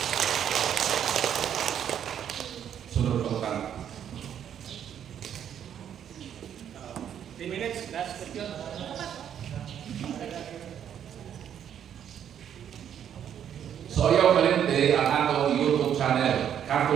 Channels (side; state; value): left; quieter; 9.3 dB